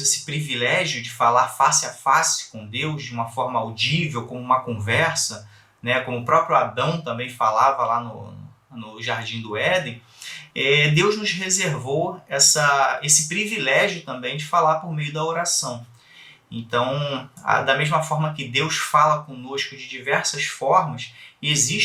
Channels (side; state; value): both; identical; correlation 1.00